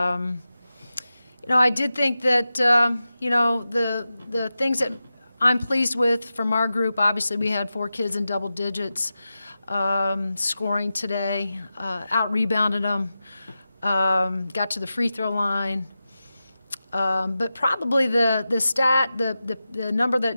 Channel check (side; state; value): both; inverted; correlation -0.93